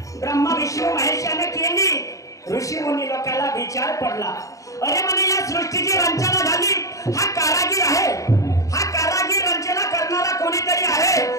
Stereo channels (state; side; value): late; right; 0.16 ms